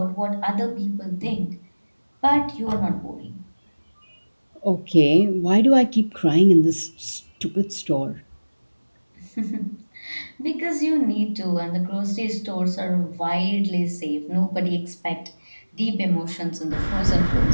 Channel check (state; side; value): inverted; both; correlation -1.00